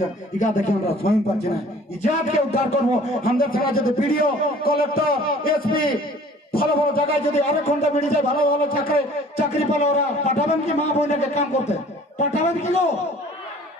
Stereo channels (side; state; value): both; normal; correlation 0.51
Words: ইটা দেখে আমরা স্বয়ং পাচ্ছি না ইজাতকে উদ্ধার করবো আমাদের থানা যদি বিডিও কলেক্টর এসপি ভালো ভালো জায়গায় যদি আরেক ঘন্টা বেরিয়ে যায় ভালো ভালো চাকরি পেলে ওরা পাঠাবেন কি মা বোনকে কাম করতে পাঠাবেন কি গো